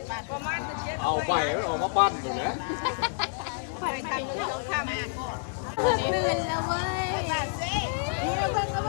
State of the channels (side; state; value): right; silent; digital silence